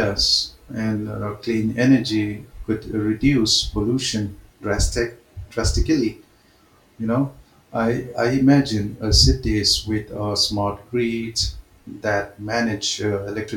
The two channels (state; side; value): identical; both; correlation 1.00